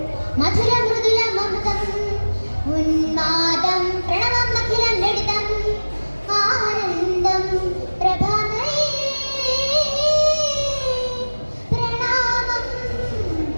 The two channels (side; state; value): both; inverted; correlation -1.00